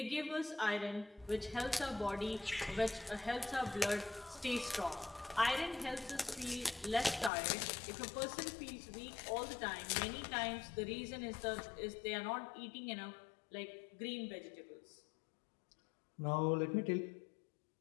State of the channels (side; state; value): right; drops out; at 7.3 s